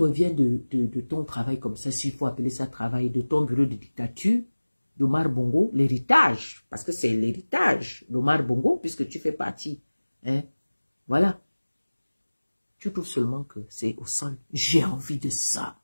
de ton travail comme ça, s'il faut appeler ça travail, de ton bureau de dictature, d'Omar Bongo, l'héritage, parce que c'est l'héritage d'Omar Bongo, puisque tu fais partie. Hein? Voilà. Tu trouves seulement que c'est au sol. J'ai envie de ça.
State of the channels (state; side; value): inverted; both; correlation -1.00